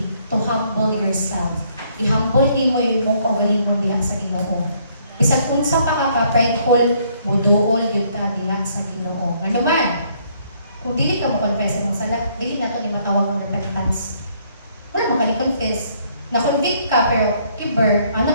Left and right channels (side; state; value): both; inverted; correlation -0.67